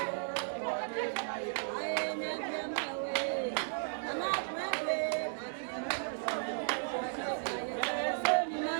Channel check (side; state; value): left; silent; digital silence